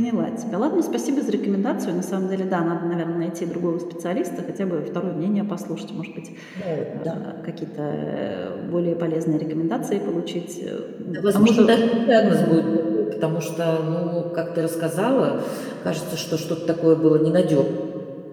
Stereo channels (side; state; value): both; identical; correlation 1.00